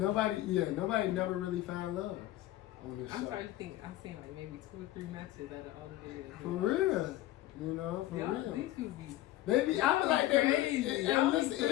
never really found love on this show. I'm trying to think. I've seen like maybe 2 or 3 matches out of all the videos. For real, for real. These people be. Baby, I feel like crazy.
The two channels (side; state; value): right; quieter; 15.2 dB